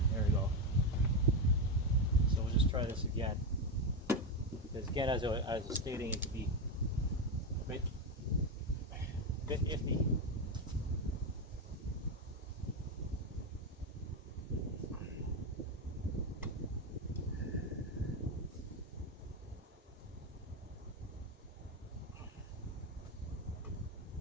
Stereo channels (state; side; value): normal; both; correlation 0.10